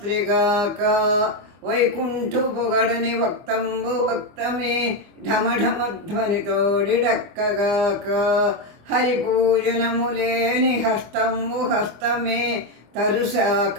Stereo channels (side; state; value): left; late; 24 ms